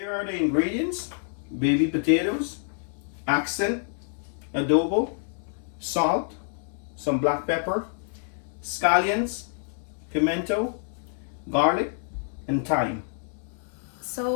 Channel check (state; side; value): silent; right; digital silence